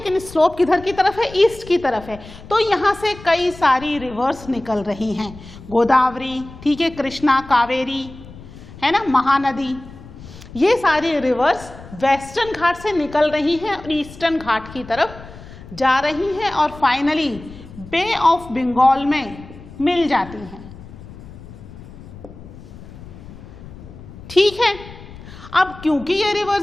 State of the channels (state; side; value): noise; left; rumble, 17 dB below the sound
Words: स्लोप किधर की तरफ है, ईस्ट की तरफ है। तो यहाँ से कई सारी रिवर्स निकल रही हैं, गोदावरी, ठीक है, कृष्णा, कावेरी, है ना, महानदी, ये सारी रिवर्स वेस्टर्न घाट से निकल रही हैं और ईस्टर्न घाट की तरफ जा रही हैं और फाइनली बे ऑफ बंगाल में मिल जाती हैं। ठीक है, अब क्योंकि ये